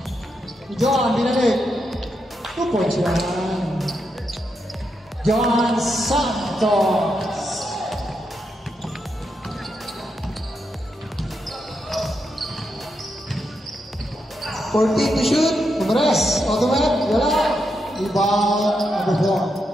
John, binalik. 2 points yan. John Santos. $14 to shoot. Kumres. Automat. Wala. Rebound. Number 4.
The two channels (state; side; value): normal; both; correlation 0.83